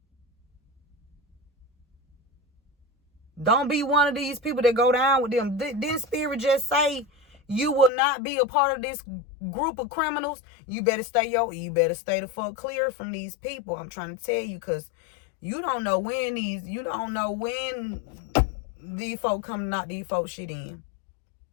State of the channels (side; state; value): right; drops out; at 7.9 s